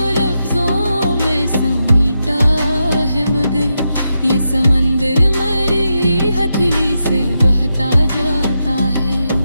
लफ्जों में समेटा है, मगर ये समंदर मेरी हथेली से बहता जाता है।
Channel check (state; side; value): inverted; both; correlation -0.86